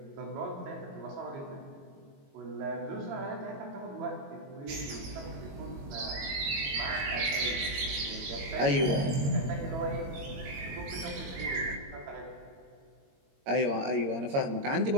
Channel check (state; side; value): late; left; 22 ms